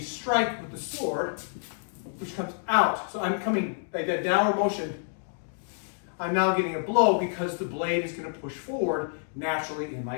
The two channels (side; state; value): right; silent; digital silence